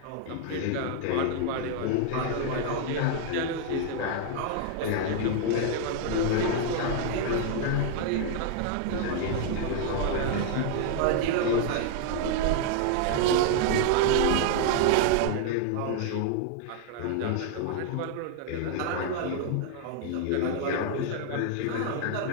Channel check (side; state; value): both; different; correlation 0.00